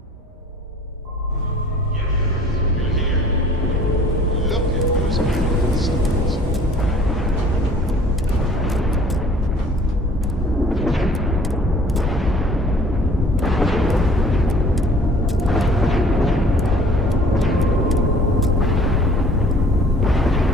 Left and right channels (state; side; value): normal; both; correlation 0.52